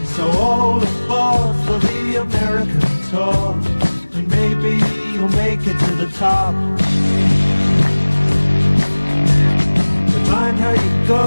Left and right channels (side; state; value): both; inverted; correlation -1.00